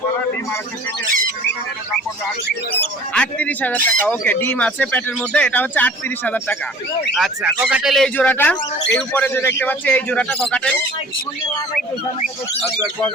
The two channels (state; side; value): normal; both; correlation 0.48